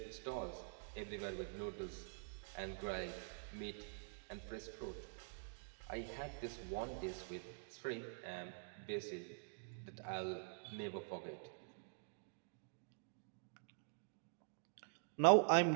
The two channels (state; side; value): silent; left; digital silence